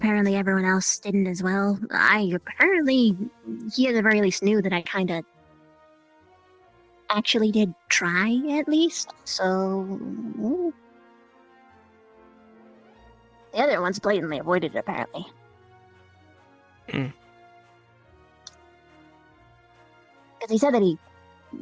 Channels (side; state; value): both; identical; correlation 1.00